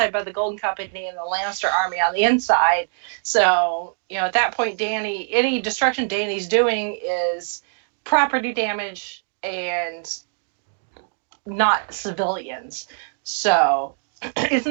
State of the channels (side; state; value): left; silent; 62 dB below the other